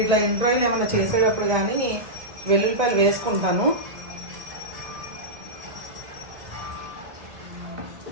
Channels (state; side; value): late; left; 1.7 ms